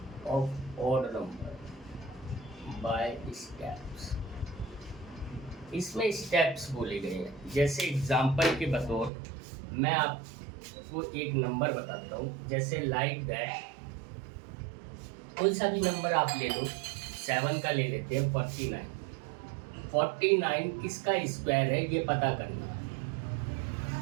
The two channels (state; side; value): drops out; left; at 9.1 s